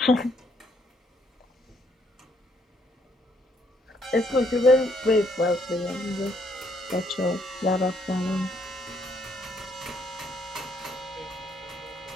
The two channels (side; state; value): both; normal; correlation 0.70